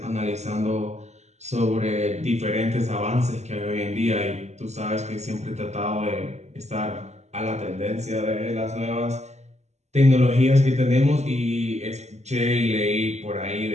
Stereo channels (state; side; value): late; left; 0.33 ms